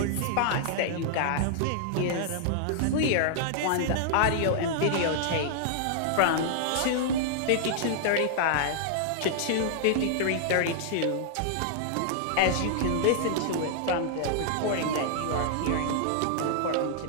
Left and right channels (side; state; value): both; different; correlation -0.01